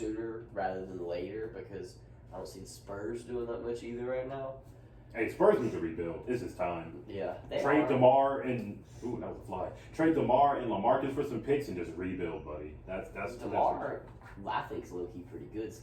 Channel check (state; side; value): identical; both; correlation 1.00